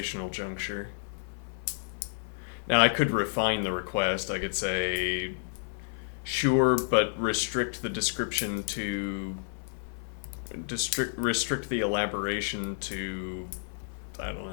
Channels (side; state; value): right; silent; 57 dB below the other